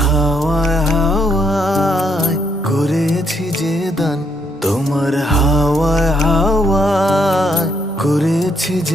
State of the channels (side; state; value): both; normal; correlation 0.74